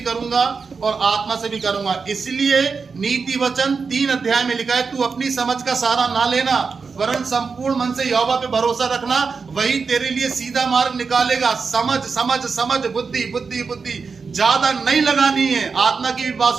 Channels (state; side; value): quieter; left; 5.1 dB